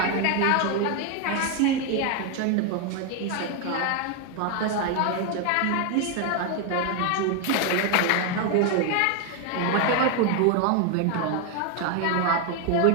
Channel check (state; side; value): different; both; correlation 0.01